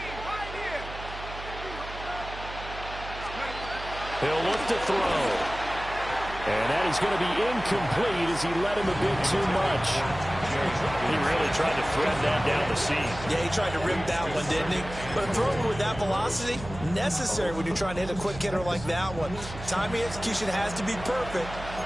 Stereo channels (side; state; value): right; noise; hum, 12 dB below the sound